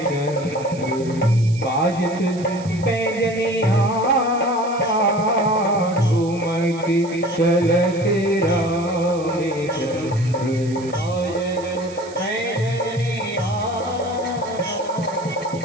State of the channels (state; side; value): noise; right; hiss, 20 dB below the sound